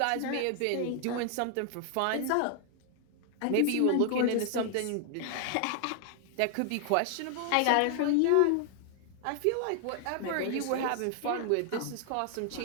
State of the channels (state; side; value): different; both; correlation 0.00